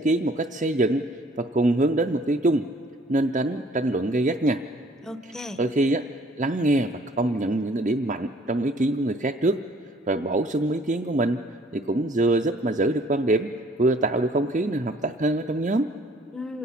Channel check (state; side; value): normal; both; correlation 0.58